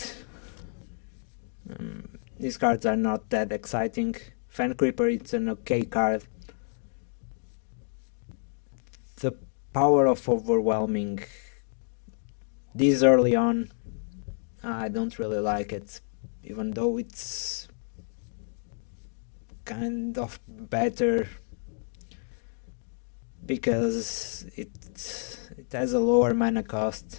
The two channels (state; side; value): silent; right; 58 dB below the other